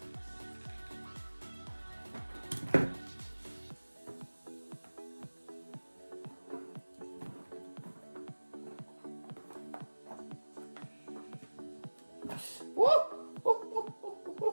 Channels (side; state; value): both; inverted; correlation -1.00